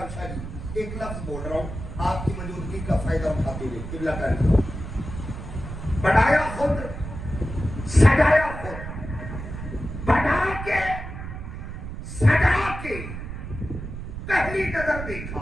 شاہ جی ایک لفظ بول رہا ہوں آپ کی موجودگی کا فائدہ اٹھاتے ہوئے، قبلہ کاری بنایا خود، سجایا خود، بنا کے سجا کے پہلی نظر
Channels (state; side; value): noise; right; rumble, 8 dB below the sound